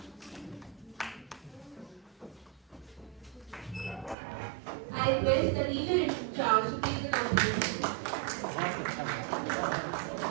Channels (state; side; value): drops out; left; at 4.2 s